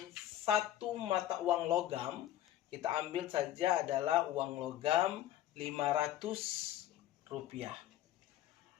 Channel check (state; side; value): quieter; right; 12.7 dB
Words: satu mata uang logam. Kita ambil saja adalah uang logam 500 rupiah.